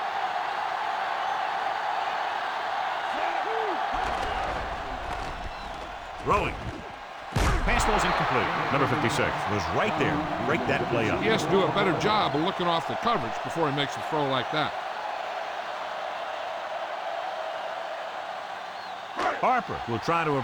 Throwing. Pass ball's incomplete. Number 56 was right there. Break that play up. He has to do a better job of looking off the coverage before he makes a throw like that. Harper will try to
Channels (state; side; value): identical; both; correlation 1.00